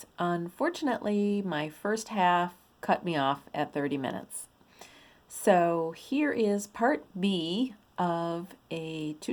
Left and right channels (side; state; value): both; identical; correlation 1.00